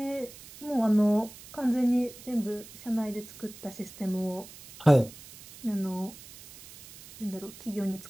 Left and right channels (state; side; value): noise; right; hiss, 18 dB below the sound